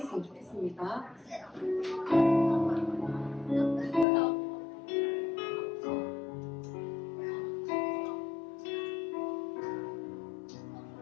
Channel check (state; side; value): drops out; right; at 4.0 s